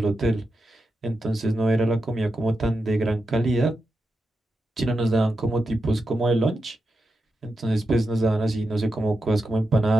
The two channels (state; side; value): normal; both; correlation 0.88